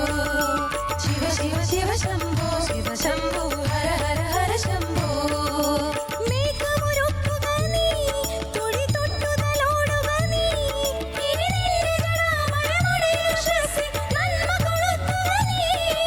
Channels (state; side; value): identical; both; correlation 1.00